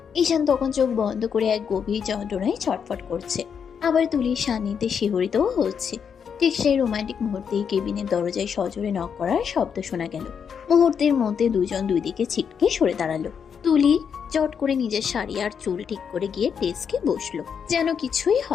ঈশান তখন চোখ বন্ধ করে এক গভীর যন্ত্রণায় ছটফট করছে, আবার তুলির সান্নিধ্যে শিহরিতও হচ্ছে। ঠিক সেই রোমান্টিক মুহূর্তেই কেবিনের দরজায় সজোরে নক করার শব্দ শোনা গেল। মুহূর্তের মধ্যে দুজন দুই দিকে ছিটকে সরে দাঁড়ালো। তুলি চট করে নিজের শাড়ি আর চুল ঠিক করে গিয়ে ডেস্কে বসলো, যেন কিছুই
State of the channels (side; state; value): right; quieter; 7.1 dB